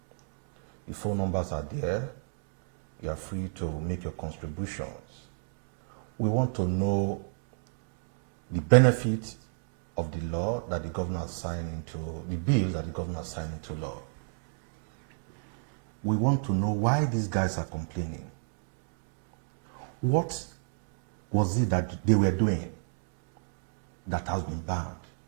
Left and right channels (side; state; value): left; silent; digital silence